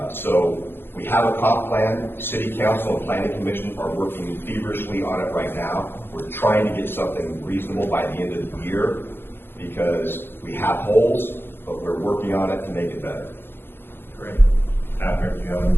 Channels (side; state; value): right; late; 0.10 ms